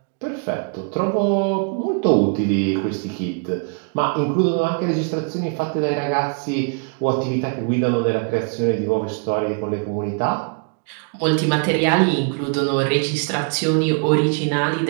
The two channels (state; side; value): quieter; left; 37.1 dB